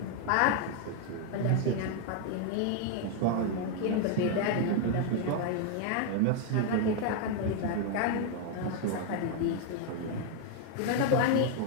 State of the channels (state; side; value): different; both; correlation 0.00